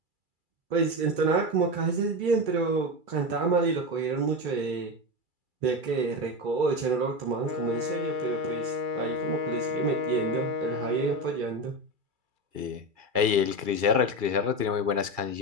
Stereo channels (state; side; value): late; left; 2.3 ms